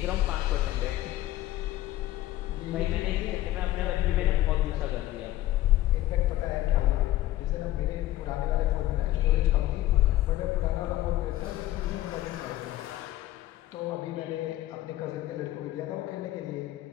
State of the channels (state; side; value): quieter; right; 15.0 dB